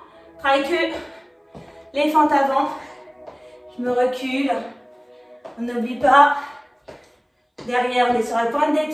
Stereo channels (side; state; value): both; identical; correlation 1.00